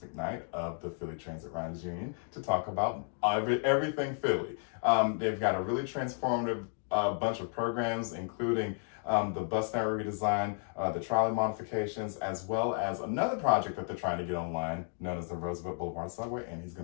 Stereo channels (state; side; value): silent; right; 56 dB below the other